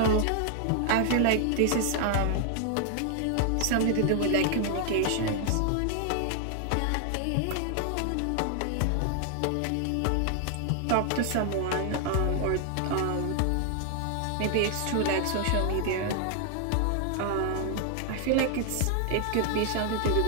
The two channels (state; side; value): different; both; correlation 0.00